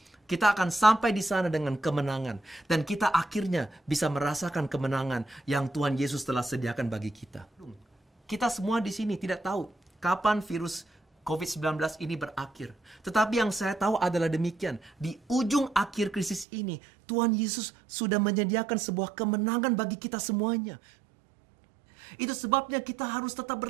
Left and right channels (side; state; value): left; drops out; at 16.4 s